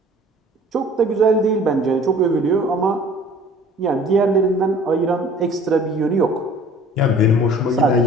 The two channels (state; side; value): normal; both; correlation 0.49